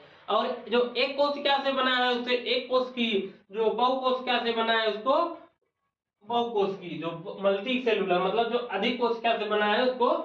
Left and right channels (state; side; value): identical; both; correlation 1.00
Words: और जो एक कोशिका से बना है, उसे एक कोशिकी। जो बहुकोशिका से बना है, उसको बहुकोशिकी। जो मल्टी सेलुलर मतलब जो अधिक कोशिका से बना है, उसको